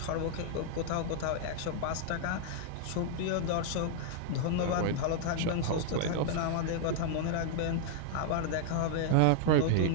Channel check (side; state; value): both; different; correlation 0.00